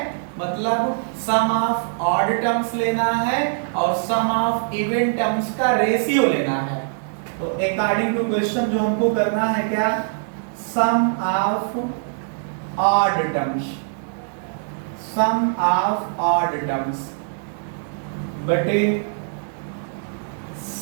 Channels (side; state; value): left; silent; digital silence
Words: मतलब सम ऑफ ऑड टर्म्स लेना है और सम ऑफ इवन टर्म्स का रेशियो लेना है। तो अकॉर्डिंग टू क्वेश्चन जो हमको करना है क्या, sum of odd terms, sum of odd terms बटे